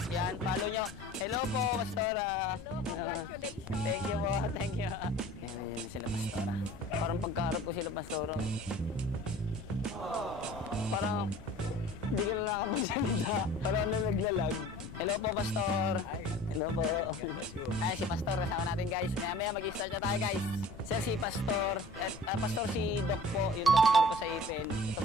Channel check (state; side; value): noise; left; rumble, 16 dB below the sound